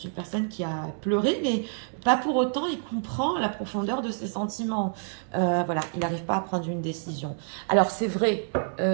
une personne qui a pleuré, mais pas pour autant, il comprend la profondeur de ses sentiments. Voilà, il n'arrive pas à prendre une décision. Alors, c'est vrai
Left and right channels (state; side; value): silent; left; digital silence